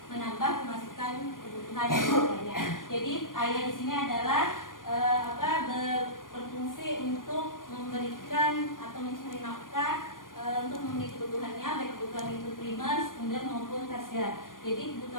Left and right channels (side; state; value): right; late; 0.90 ms